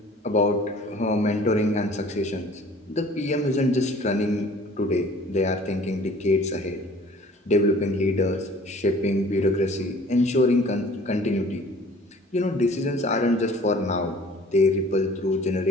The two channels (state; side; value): normal; both; correlation 0.50